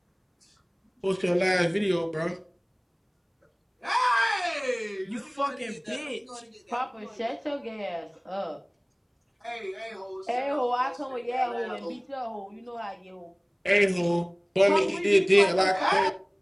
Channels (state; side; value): identical; both; correlation 1.00